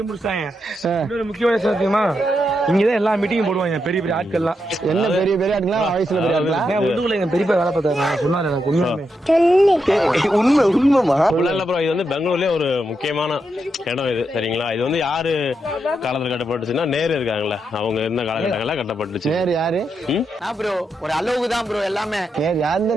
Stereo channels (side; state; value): both; normal; correlation 0.83